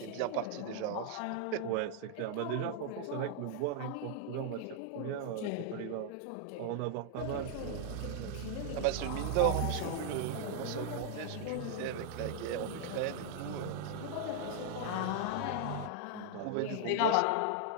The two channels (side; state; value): both; different; correlation 0.00